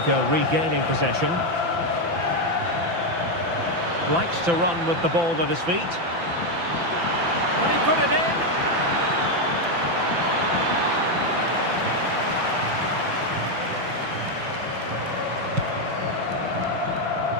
regaining possession. Likes to run with the ball at his feet. Can he put it in?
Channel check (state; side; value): late; left; 5.9 ms